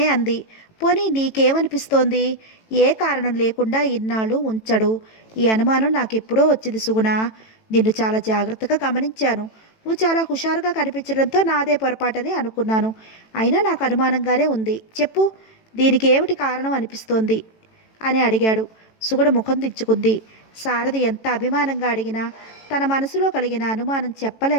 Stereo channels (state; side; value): late; right; 18 ms